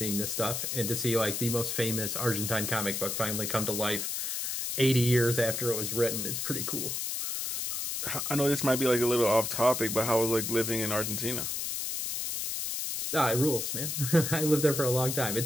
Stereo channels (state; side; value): noise; left; hiss, 2 dB below the sound